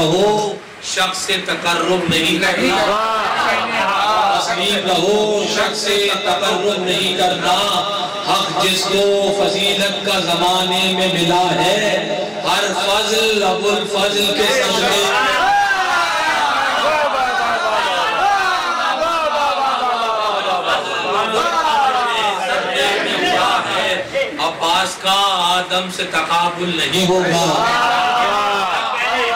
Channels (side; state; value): both; identical; correlation 1.00